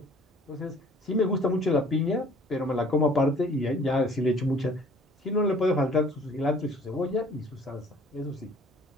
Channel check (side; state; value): both; normal; correlation 0.54